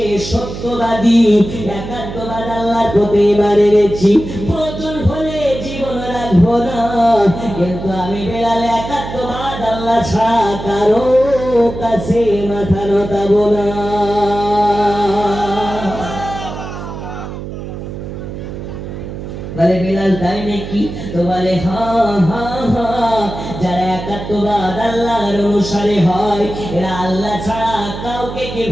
সত্যবাদী একাত্মবাদ আল্লাহর প্রতি ঈমান এনেছি, প্রয়োজন হলে জীবন রাখবো না, কিন্তু আমি বেলাল একাত্মবাদ আল্লাহ ছাড়া কারো কাছে মাথা নতাবো না। বলে বেলাল তাই নাকি? তো বলে হ্যাঁ হ্যাঁ হ্যাঁ, যারা একাত্মবাদ আল্লাহর অনুসারে হয় এরা আল্লাহ ছাড়া কাউকে কি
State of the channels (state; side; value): noise; right; hum, 9 dB below the sound